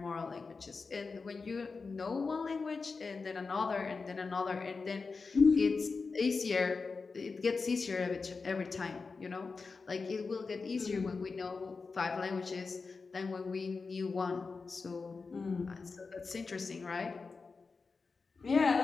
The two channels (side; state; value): right; quieter; 4.5 dB